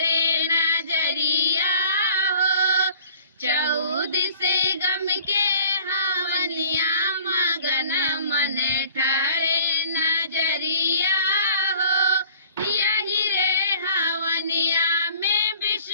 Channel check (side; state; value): both; inverted; correlation -0.51